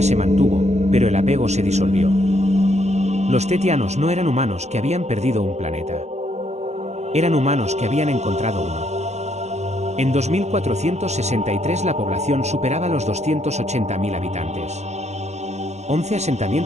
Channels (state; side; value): late; left; 0.32 ms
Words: se mantuvo, pero el apego se disolvió. Los tetianos no eran humanos que habían perdido un planeta. Eran humanos que habían encontrado uno. En 2463 la población superaba los 280.000 habitantes. 11